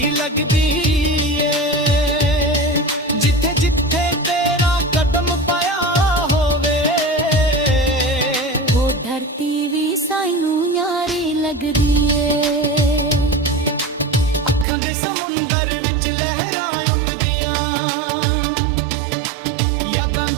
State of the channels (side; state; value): left; drops out; at 14.7 s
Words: ਲੱਗਦੀ ਏ। ਜਿੱਥੇ ਜਿੱਥੇ ਤੇਰਾ ਕਦਮ ਪਾਇਆ ਹੋਵੇ, ਉਹ ਧਰਤੀ ਵੀ ਸਾਨੂੰ ਯਾਰੀ ਲੱਗਦੀ ਏ। ਅੱਖਾਂ ਦੇ ਸਮੁੰਦਰ ਵਿੱਚ ਲਹਿਰਾਂ ਉੱਠਦੀਆਂ, ਯਾਦਾਂ